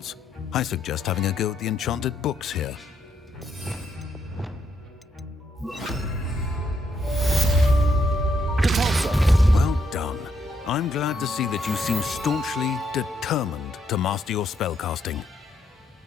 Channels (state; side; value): normal; both; correlation 0.76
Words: I suggest having a go at the enchanted books here. Well done. I'm glad to see that you seem staunchly determined to master your spellcasting.